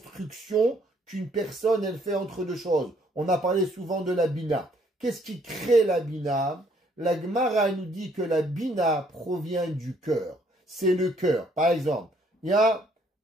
qu'une personne, elle fait entre deux choses. On a parlé souvent de la bina. Qu'est-ce qui crée la bina? La Gemara nous dit que la bina provient du cœur. C'est le cœur. Par exemple, il y a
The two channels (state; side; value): normal; both; correlation 0.65